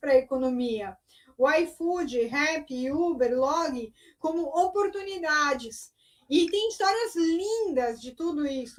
a economia. O iFood, Rappi, Uber, Log, como oportunidades. E tem histórias lindas de tudo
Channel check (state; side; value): identical; both; correlation 1.00